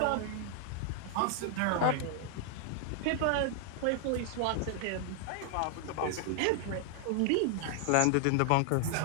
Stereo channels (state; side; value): different; both; correlation 0.00